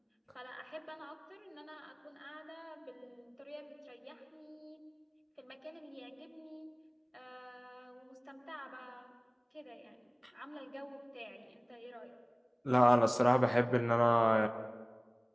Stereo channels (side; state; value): both; identical; correlation 1.00